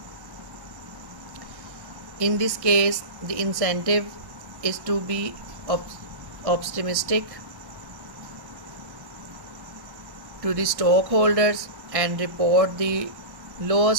In this case, the incentive is to be optimistic to the stockholders and report the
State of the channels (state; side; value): late; left; 1.1 ms